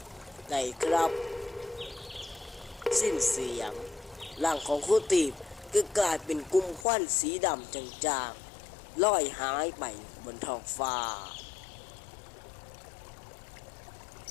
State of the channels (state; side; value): drops out; right; at 6.9 s